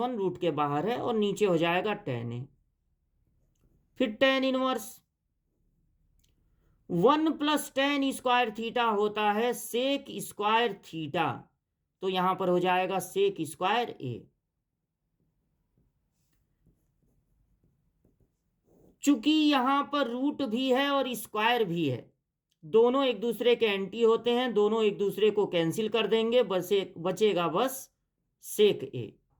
रूट के बाहर है, और नीचे हो जाएगा tan a। फिर tan इनवर्स 1+tan² होता है sec², तो यहां पर हो जाएगा sec²a। चूंकि यहां पर रूट भी है और स्क्वायर भी है, दोनों एक दूसरे के एंटी होते हैं, दोनों एक दूसरे को कैंसिल कर देंगे, बचेगा बस सेक ए।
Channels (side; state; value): both; identical; correlation 1.00